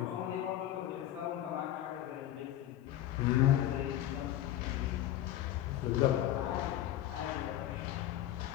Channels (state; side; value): quieter; right; 12.6 dB